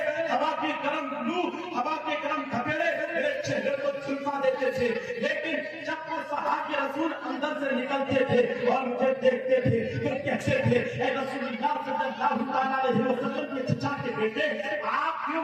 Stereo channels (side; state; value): both; identical; correlation 1.00